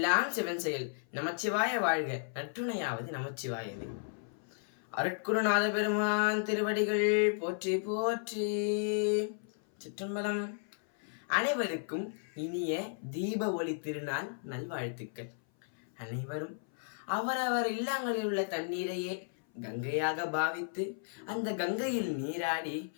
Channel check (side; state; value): right; silent; 55 dB below the other